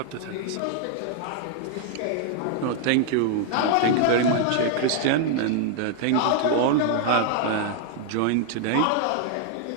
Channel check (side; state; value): both; different; correlation 0.00